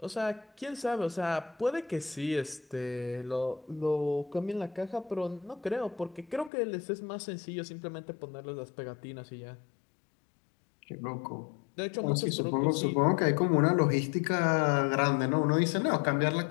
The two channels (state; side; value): drops out; right; at 6.5 s